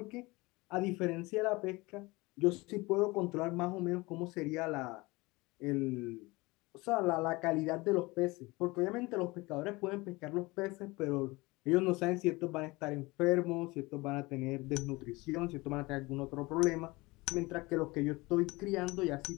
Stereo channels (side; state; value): right; quieter; 23.0 dB